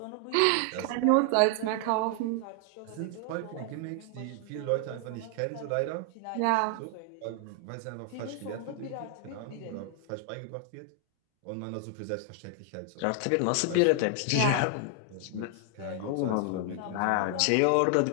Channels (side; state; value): both; different; correlation 0.00